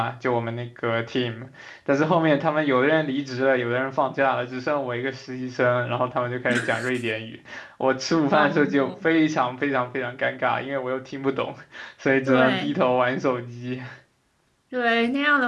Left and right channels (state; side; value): identical; both; correlation 1.00